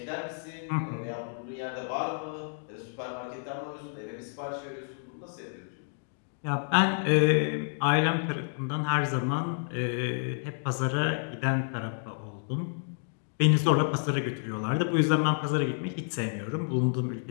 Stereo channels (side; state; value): right; silent; digital silence